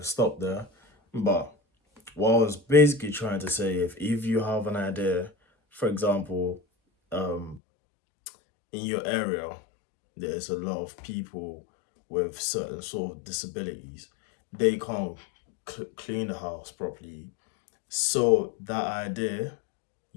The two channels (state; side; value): drops out; right; at 7.6 s